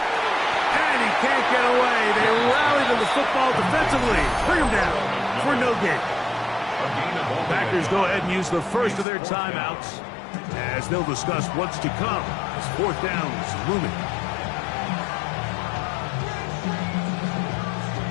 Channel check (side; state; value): right; drops out; at 9.1 s